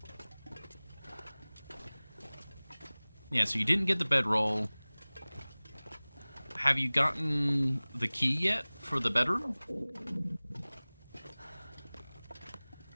Yeah, so you didn't get the bedroll. Have you gotten the key yet for the bedroom?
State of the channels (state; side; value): inverted; both; correlation -1.00